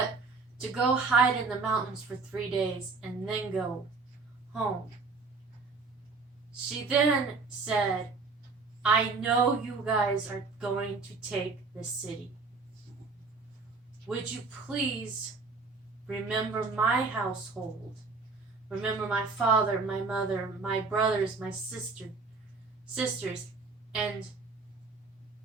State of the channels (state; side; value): quieter; left; 4.2 dB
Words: to go hide in the mountains for 3 days and then go home. She then said, I know you guys are going to take this city. Would you please remember my household. Remember my father, my mother, my brothers, my sisters, and